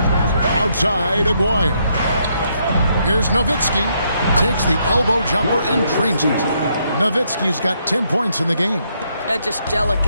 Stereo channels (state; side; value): inverted; both; correlation -0.75